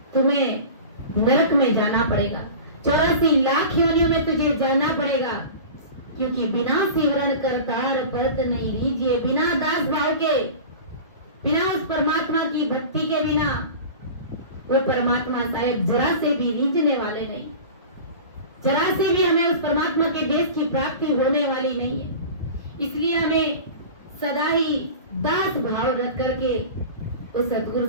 तुम्हें नरक में जाना पड़ेगा। 84 लाख योनियों में तुझे जाना पड़ेगा, क्योंकि बिना सिमरन करतार परत नहीं रीजिए। बिना दास भाव के, बिना उस परमात्मा की भक्ति के बिना वो परमात्मा साहेब जरा से भी रीझने वाले नहीं, जरा से भी हमें उस परमात्मा के देश की प्राप्ति होने वाली नहीं है। इसलिए हमें सदा ही दास भाव रख करके उस सतगुरु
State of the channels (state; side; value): inverted; both; correlation -0.35